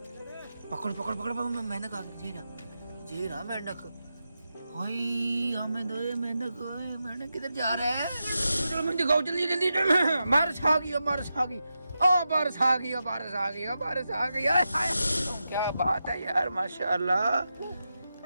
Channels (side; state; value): both; inverted; correlation -0.89